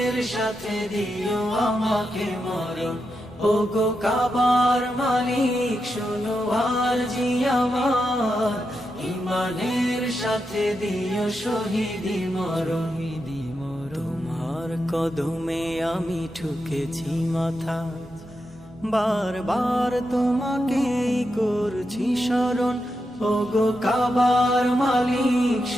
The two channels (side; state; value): both; normal; correlation 0.86